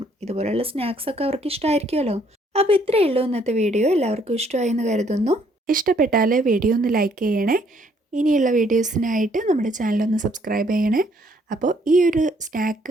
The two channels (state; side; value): normal; both; correlation 0.66